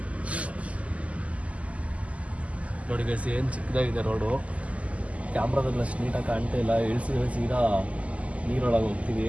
ನೋಡಿ ಗೈಸ್, ಏನು ಚಿಕ್ಕದಾಗಿದೆ ರೋಡು. ಕ್ಯಾಮ್ರಾದಲ್ಲಿ ಅಷ್ಟು ನೀಟಾಗಿ ಕಾಣ್ತಾ ಇಲ್ಲ. ಇಳಿಸಿ ಸೀದಾ ನೀರೊಳಗೆ ಹೋಗ್ತೀವಿ.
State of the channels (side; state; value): left; late; 0.067 ms